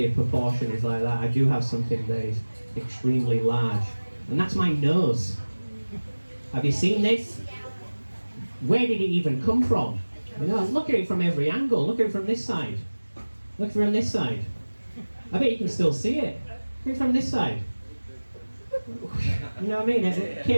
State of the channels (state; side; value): inverted; both; correlation -1.00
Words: proportion is like that, I do have something that is extremely large, and that's my nose. Have you seen this? Where did it even come from? You know, look at it from every angle. Look at it from this side. Look from this side. I bet you can still see it. Look at it from this side. You know what I mean? It